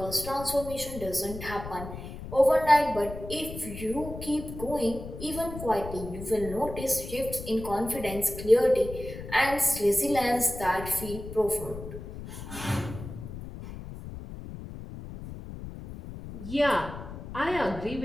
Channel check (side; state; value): left; noise; rumble, 11 dB below the sound